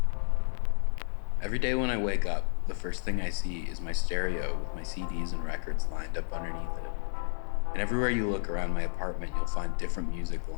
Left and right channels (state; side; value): silent; right; digital silence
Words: Every day when I wake up, the first thing I see is my stereo with my CDs and records lined up underneath it. And everywhere you look around my apartment, you'll find different music